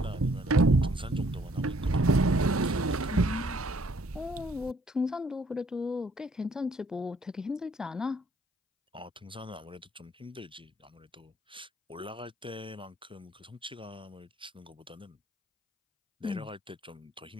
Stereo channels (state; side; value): normal; both; correlation 0.64